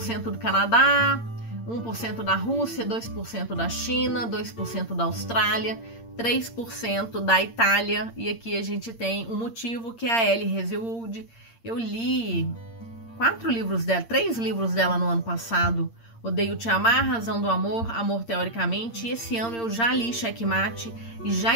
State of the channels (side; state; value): right; late; 8.7 ms